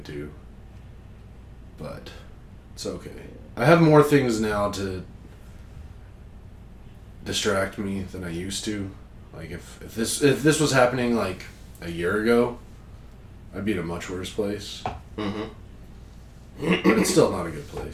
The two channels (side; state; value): both; identical; correlation 1.00